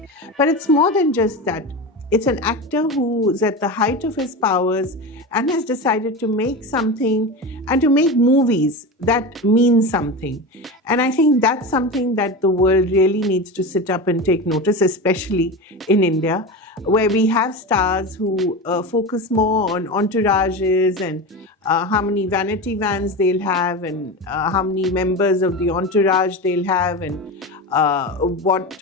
but it's more than just that. It's an actor who's at the height of his powers and has decided to make something and to make movies that mean something. And I think that's something that the world really needs to sit up and take notice, especially in India, where we have stars who focus more on entourages and how many vanity vans they'll have and how many members of the entourage they'll have and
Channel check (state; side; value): normal; both; correlation 0.24